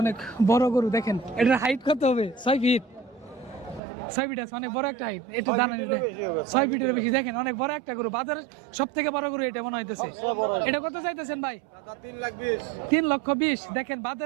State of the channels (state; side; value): drops out; left; at 3.8 s